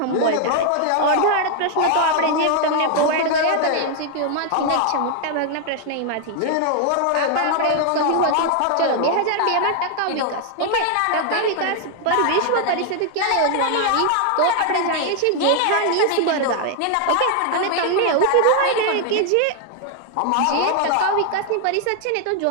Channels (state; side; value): different; both; correlation 0.00